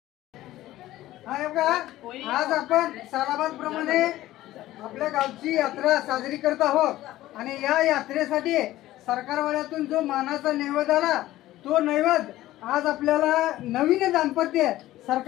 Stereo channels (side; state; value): right; quieter; 15.4 dB